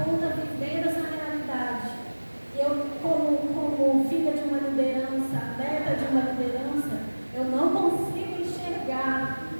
vivendo essa realidade. Eu, como filha de uma liderança, neta de uma liderança, eu não consigo enxergar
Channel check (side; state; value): both; inverted; correlation -1.00